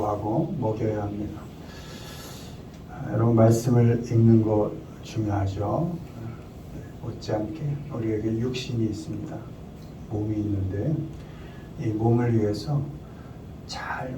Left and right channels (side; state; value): both; identical; correlation 1.00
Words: 먹여야 합니다. 여러분 말씀을 읽는 것 중요하죠. 못지않게 우리에게 육신이 있습니다. 몸이 있는데 이 몸을 위해서 잘